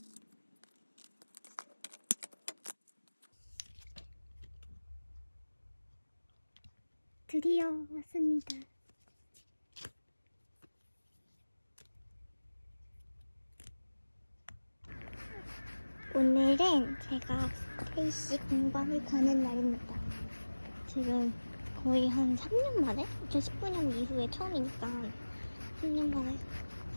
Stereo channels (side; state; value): both; inverted; correlation -1.00